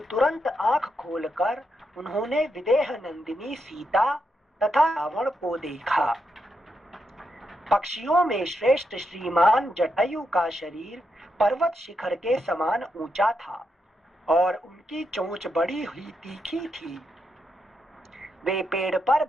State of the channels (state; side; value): normal; both; correlation 0.82